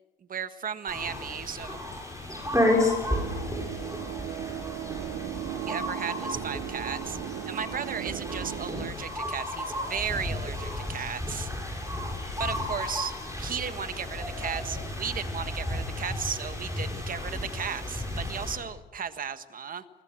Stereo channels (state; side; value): normal; both; correlation 0.38